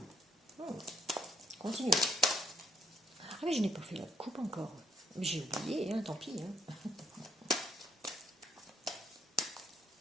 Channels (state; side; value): normal; both; correlation 0.72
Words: Continuez. Ah mais je n'ai pas fait la coupe encore. J'ai oublié, tant pis.